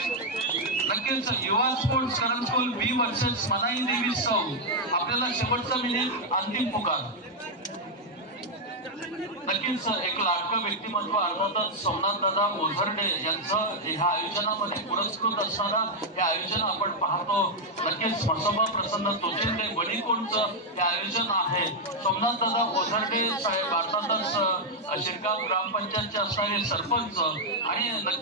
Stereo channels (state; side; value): normal; both; correlation -0.01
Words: नक्कीच युवा स्पोर्ट्स करंजकोल बी वर्सेस मनाई देवी सौ आपल्याला शेवटचा मिनिट अंतिम पुकार। नक्कीच एक लाडकं व्यक्तिमत्व अर्थातच सोमनाथ दादा ओझरडे यांचं ह्या आयोजनामध्ये पुरस्कृत असणारा हे आयोजन आपण पाहतो। नक्कीच म्हसोबा प्रसन्न तोचिंदे वडीकोणचं हे आयोजन आहे। सोमनाथ दादा ओझरडे साहेब अर्थातच शिरगाव ग्रामपंचायतचे असणारे सरपंच आणि